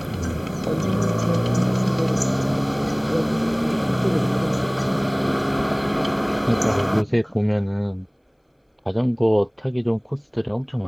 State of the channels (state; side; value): identical; both; correlation 1.00